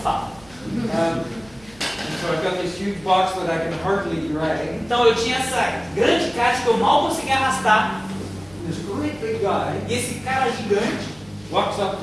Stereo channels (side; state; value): right; noise; hum, 26 dB below the sound